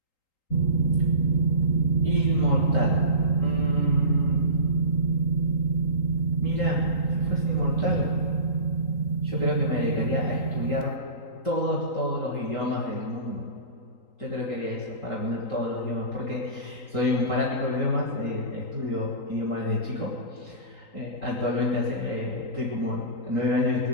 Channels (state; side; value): late; right; 3.8 ms